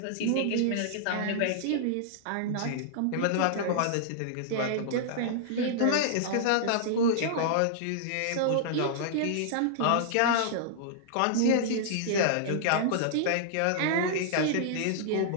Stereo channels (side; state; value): both; different; correlation -0.02